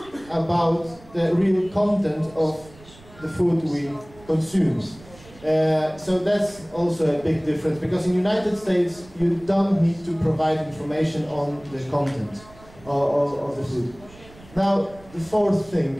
about the real content of the food we consume. So that's also a big difference, because in the United States you don't need to provide information on the content of the food. Now, the fourth thing,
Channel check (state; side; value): noise; right; rumble, 23 dB below the sound